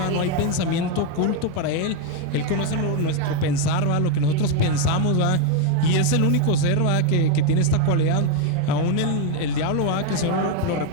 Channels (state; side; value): different; both; correlation 0.01